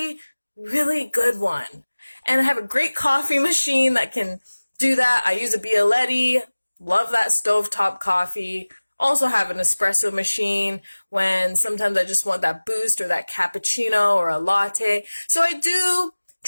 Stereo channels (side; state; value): both; inverted; correlation -1.00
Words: really good one. And I have a great coffee machine that can do that. I use a Bialetti. Love that stovetop coffee. Also have an espresso machine when sometimes I just want that boost or that cappuccino or a latte. So I do